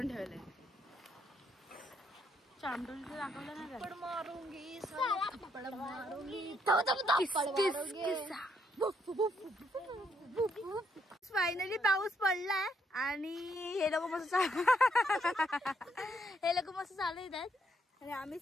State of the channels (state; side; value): normal; both; correlation 0.73